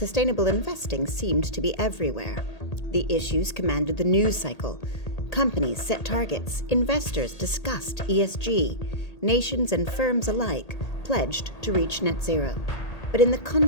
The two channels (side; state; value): right; late; 1.8 ms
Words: investing seemed to be everywhere. The issues commanded the news cycle. Companies set targets, investors discussed ESG, nations and firms alike pledged to reach net zero. But in the